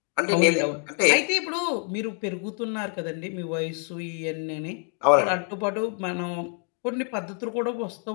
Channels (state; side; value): quieter; right; 39.6 dB